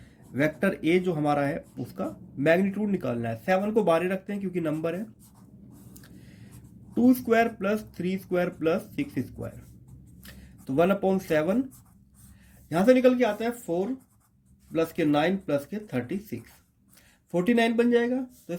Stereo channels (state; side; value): identical; both; correlation 1.00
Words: वेक्टर ए जो हमारा है उसका मैग्नीट्यूड निकालना है। 7 को बाहर ही रखते हैं क्योंकि नंबर है। 2 square plus 3 square plus 6 square, तो 1/7 यहां से निकल के आता है 4 प्लस के 9 प्लस के 36, 49 बन जाएगा। तो